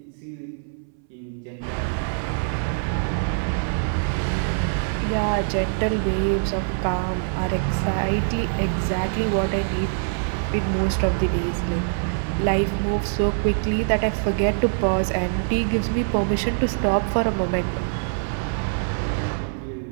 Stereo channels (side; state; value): left; silent; 63 dB below the other